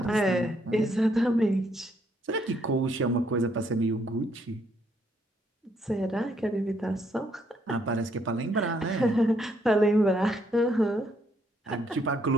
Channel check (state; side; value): normal; both; correlation 0.72